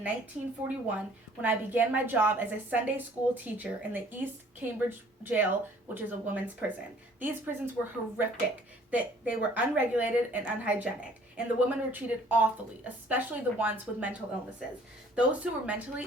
1941 when I began my job as a Sunday school teacher in the East Cambridge Jail, which is a women's prison. These prisons were horrific. They were unregulated and unhygienic, and the women were treated awfully, especially the ones with mental illnesses. Those who were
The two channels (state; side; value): normal; both; correlation 0.56